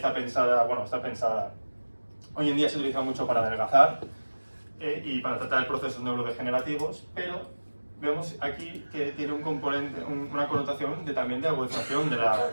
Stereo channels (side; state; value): both; inverted; correlation -1.00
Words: pensada, hoy en día se utiliza mucho para adelgazar y para tratar procesos neurodegenerativos, pero vemos aquí que tiene un componente, una connotación también de agudización